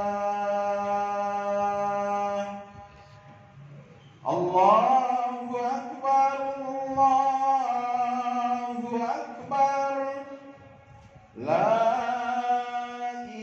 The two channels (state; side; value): identical; both; correlation 1.00